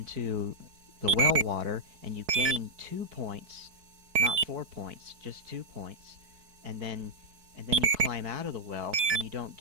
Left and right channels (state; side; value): late; left; 4.6 ms